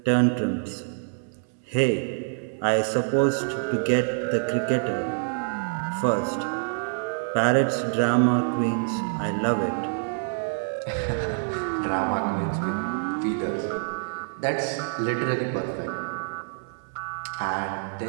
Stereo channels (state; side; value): silent; left; 61 dB below the other